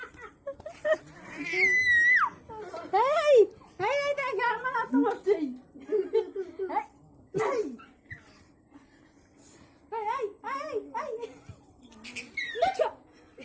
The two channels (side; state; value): both; identical; correlation 1.00